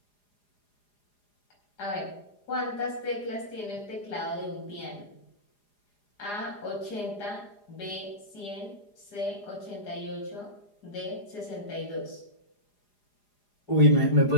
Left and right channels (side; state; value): right; late; 4.9 ms